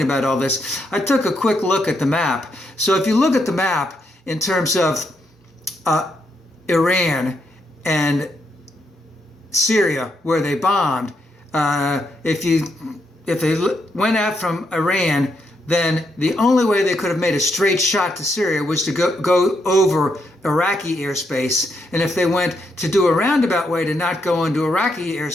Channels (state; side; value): normal; both; correlation 0.79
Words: about all this. I took a quick look at the map. So if you look at the map in terms of Iran and Syria, where they bombed, if they went out from Iran, then the only way they could have made a straight shot to Syria was to go over Iraqi airspace. And if they went to do a roundabout way to not go into Iraqi